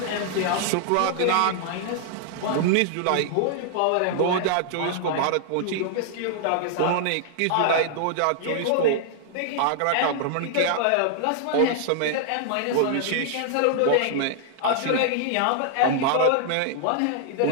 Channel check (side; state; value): both; different; correlation -0.01